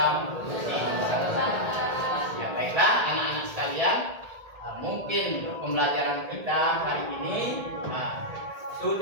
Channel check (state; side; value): late; left; 1.8 ms